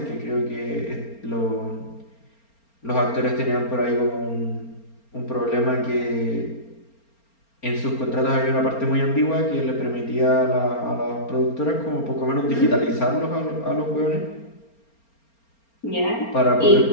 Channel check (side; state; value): right; late; 4.3 ms